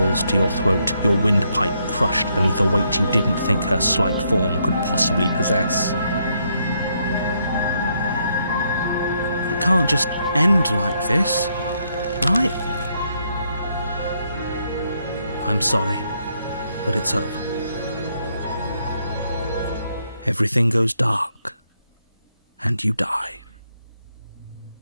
to your throat, your windpipe crushed beneath a weight you didn't think her slight form could possibly possess. It can't just end like this, right? I'm sorry, but it's over. Everything goes dark, and you die.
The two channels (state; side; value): inverted; both; correlation -0.75